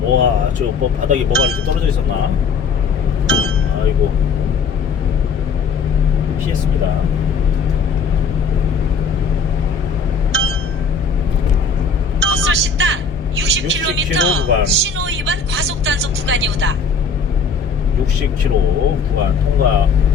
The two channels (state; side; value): quieter; right; 5.2 dB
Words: 우와, 저 뭐 바닥에 뭐가 이렇게 떨어져 있었나? 아이고, 피했습니다. 헛솔 식당 60km 구간. 신호 위반 과속 단속 구간이오다. 60km 구간